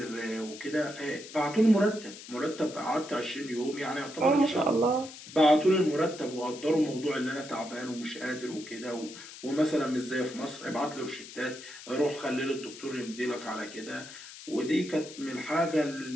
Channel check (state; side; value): noise; left; hiss, 15 dB below the sound